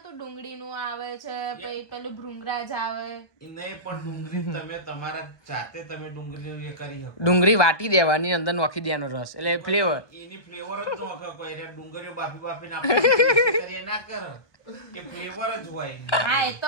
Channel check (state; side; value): late; right; 1.2 ms